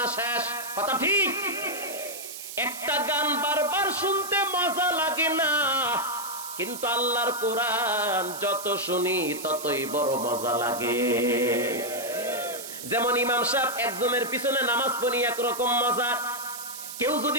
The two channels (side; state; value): right; noise; hiss, 10 dB below the sound